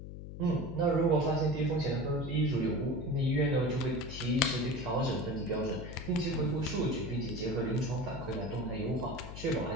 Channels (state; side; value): noise; left; hum, 10 dB below the sound